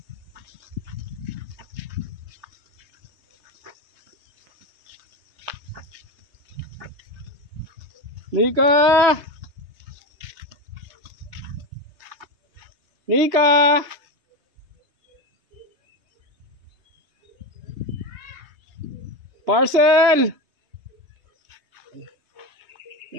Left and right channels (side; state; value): left; late; 3.2 ms